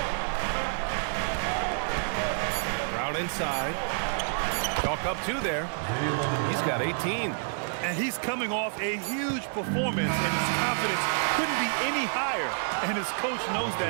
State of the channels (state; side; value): silent; left; digital silence